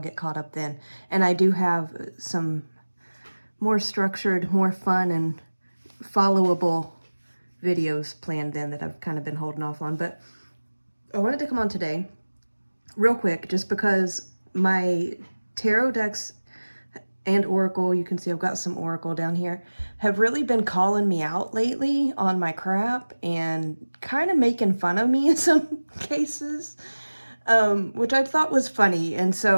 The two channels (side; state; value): both; inverted; correlation -1.00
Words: caught up then. And I do have some more structured, more fun, and followable videos planned then that I've kind of been holding off on. But I wanted to come on today real quick just because my tarot decks and Oracle, you can see I've got some Oracle down here, have really been calling me out lately on my crap and kind of making fun of me in some cases, which I thought was funny. And